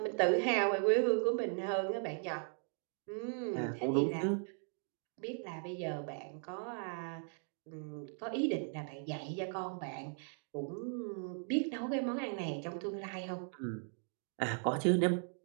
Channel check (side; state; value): left; silent; 53 dB below the other